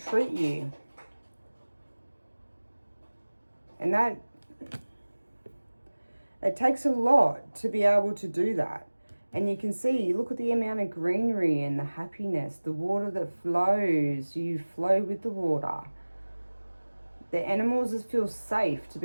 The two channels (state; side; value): inverted; both; correlation -1.00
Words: you. And that, it takes a lot to be able to do that. And you can see, look at the amount of greenery and the happiness, the water that flows. You flow with the water. The animals feel safe to